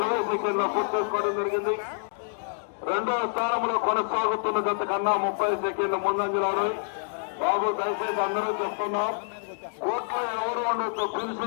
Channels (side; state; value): right; silent; digital silence